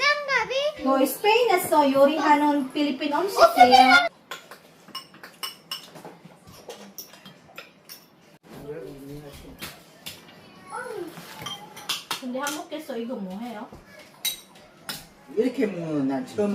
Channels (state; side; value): identical; both; correlation 1.00